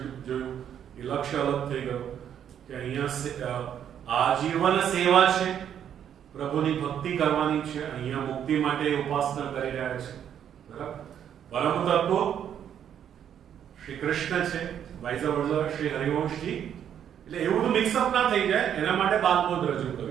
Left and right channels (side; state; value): left; quieter; 9.3 dB